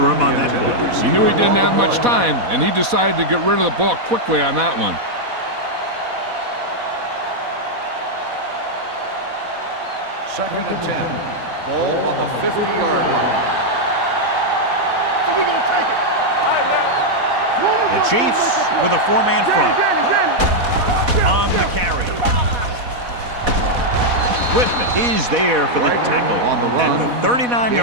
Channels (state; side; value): late; left; 4.1 ms